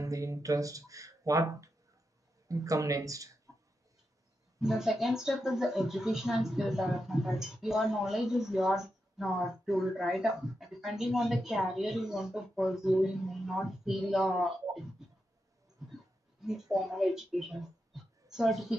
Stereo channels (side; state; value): both; normal; correlation 0.87